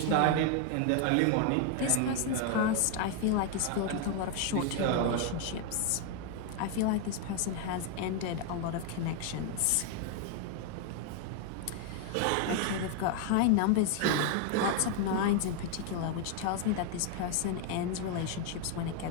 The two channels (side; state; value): both; different; correlation 0.00